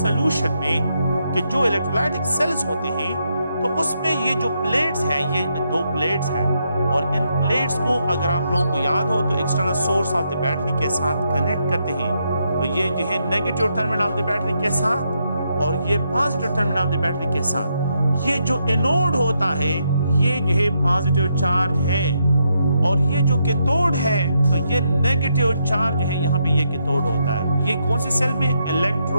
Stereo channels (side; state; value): both; inverted; correlation -0.79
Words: में कि जो इलेक्ट्रोलाइटिक सेल्स होते हैं तो उसमें ये जो प्लेट्स हैं, ये दो प्लेट्स हैं और इन प्लेट्स को अगर आप लोगों को याद हो तो external source of the battery के साथ कनेक्ट करते हैं। तो ये जो है negative terminal of the battery के साथ और ये positive terminal of the battery के साथ। ये जो एनोड होता है ये जो है पॉजिटिव चार्ज है और ये जो कैथोड है तो ये नेगेटिव चार्ज है, यहाँ पे ये कैथोड होता है। ये कौन से सेल में?